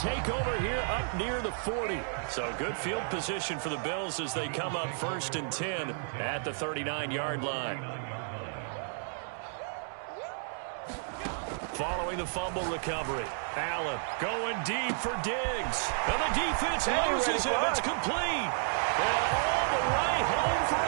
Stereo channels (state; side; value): silent; left; digital silence